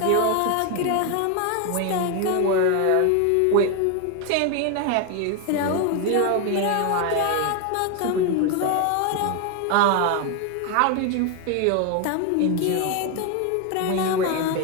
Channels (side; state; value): both; different; correlation 0.01